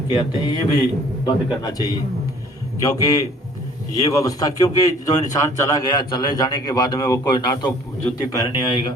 आते हैं, ये भी बंद करना चाहिए। क्योंकि ये व्यवस्था, क्योंकि जो इंसान चला गया, चले जाने के बाद में वो कोई ना तो जूती पहनने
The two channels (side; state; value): both; normal; correlation 0.54